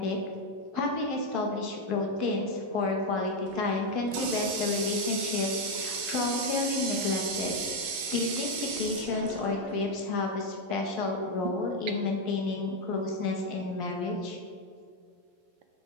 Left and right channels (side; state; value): left; late; 11 ms